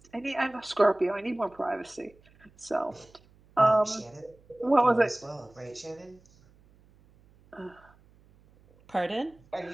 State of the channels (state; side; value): noise; right; hum, 29 dB below the sound